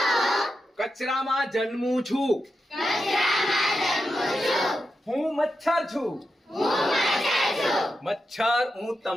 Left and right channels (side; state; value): both; normal; correlation 0.88